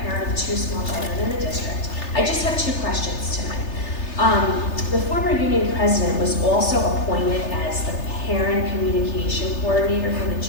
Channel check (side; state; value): right; late; 3.3 ms